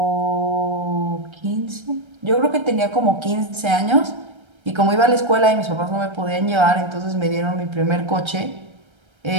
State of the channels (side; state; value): left; late; 1.3 ms